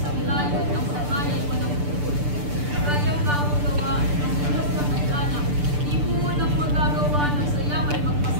layo ng samay ay walang pupul. Kayang gawang gawa ng ulos na may anak. Di po nang magagawa ng saya ay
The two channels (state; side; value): late; left; 6.8 ms